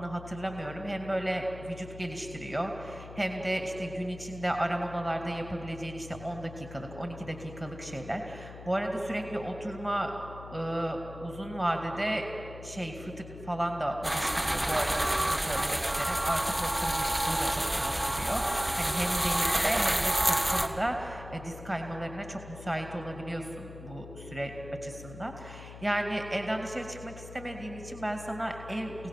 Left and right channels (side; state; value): left; noise; hum, 13 dB below the sound